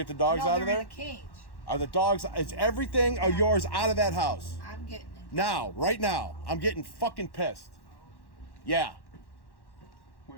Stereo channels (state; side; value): late; right; 1.1 ms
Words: the dogs no, out of they're there? in a cage. Are the dogs? Is everything of yours out of that house I'm getting it. now? Right now, I'm getting fucking pissed. Yeah,